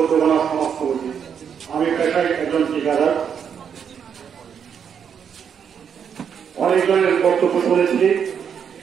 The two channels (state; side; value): quieter; left; 7.6 dB